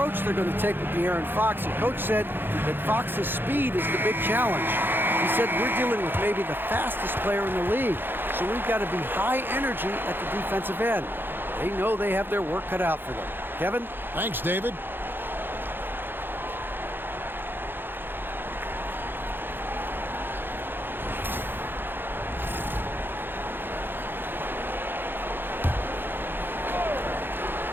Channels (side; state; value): left; late; 0.099 ms